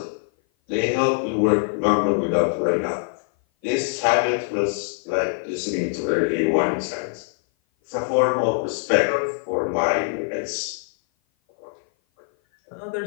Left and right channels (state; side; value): silent; right; 56 dB below the other